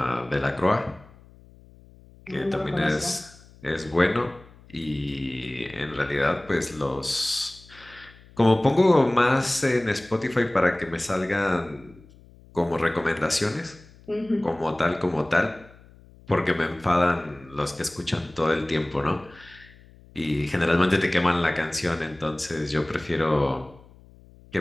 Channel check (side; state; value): left; noise; hum, 24 dB below the sound